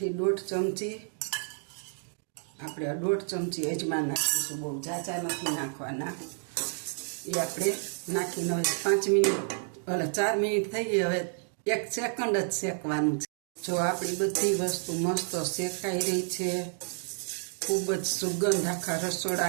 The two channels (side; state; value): left; silent; 58 dB below the other